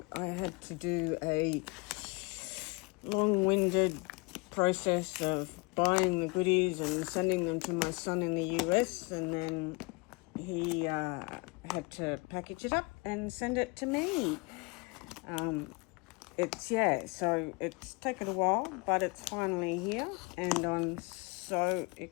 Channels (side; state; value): right; quieter; 28.3 dB